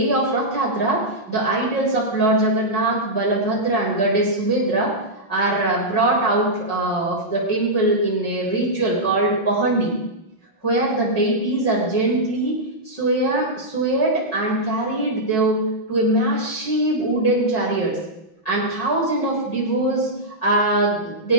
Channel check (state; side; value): late; right; 5.4 ms